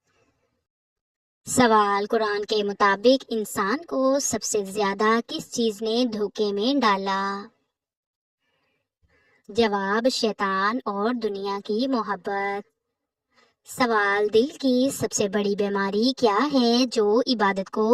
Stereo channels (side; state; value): both; identical; correlation 1.00